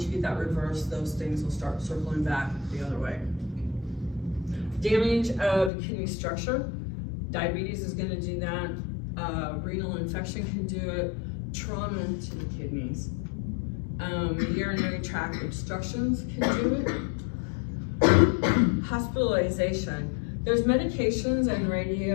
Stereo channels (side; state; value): right; drops out; at 5.7 s